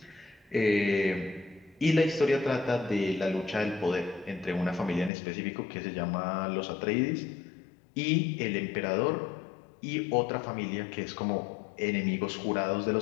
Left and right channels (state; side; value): drops out; right; at 5.1 s